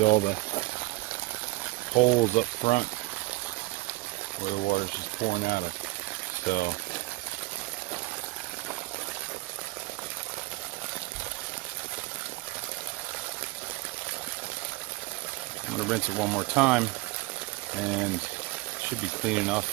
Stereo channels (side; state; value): left; quieter; 22.1 dB